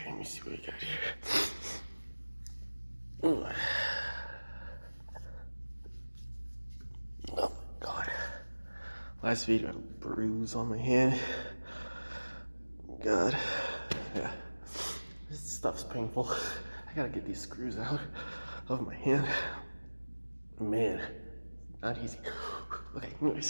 let me see what we got here. Oh my god. Last video, I had a bruise on my hand. God. Yeah. This stuff's painful. I gotta get these screws out of my hand. Man, not easy. Okay,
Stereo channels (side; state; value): both; inverted; correlation -1.00